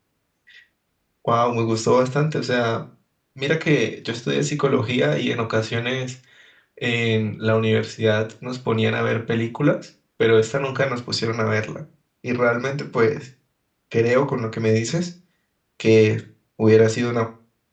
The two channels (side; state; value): both; identical; correlation 1.00